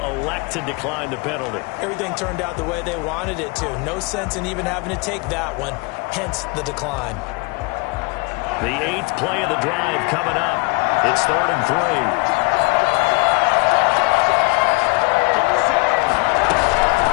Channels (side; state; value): right; quieter; 28.8 dB